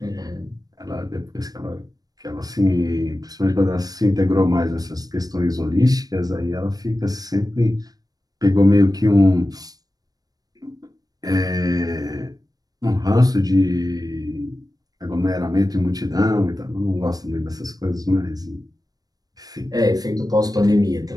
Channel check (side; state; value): left; late; 0.18 ms